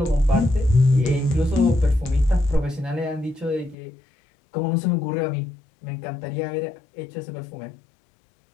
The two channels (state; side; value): drops out; right; at 3.8 s